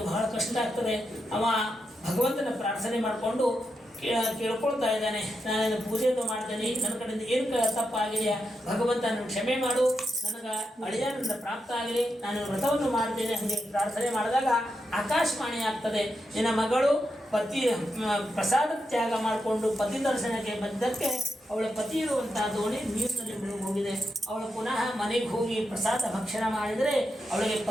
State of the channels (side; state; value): both; normal; correlation 0.85